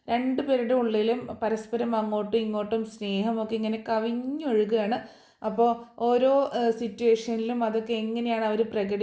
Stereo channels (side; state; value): both; identical; correlation 1.00